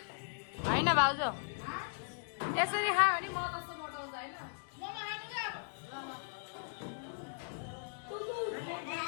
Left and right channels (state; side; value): silent; right; digital silence